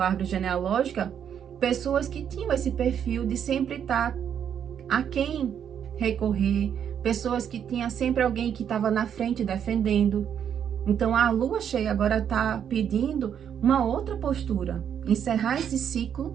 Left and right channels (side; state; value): left; quieter; 8.6 dB